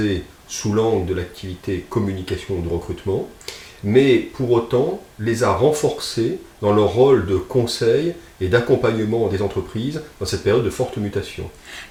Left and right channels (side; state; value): both; identical; correlation 1.00